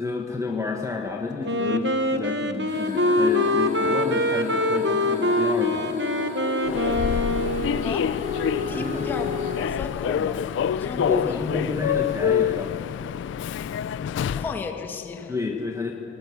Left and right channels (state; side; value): quieter; right; 3.6 dB